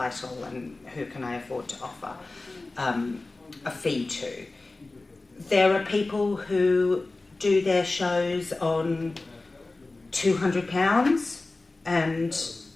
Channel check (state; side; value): quieter; right; 3.2 dB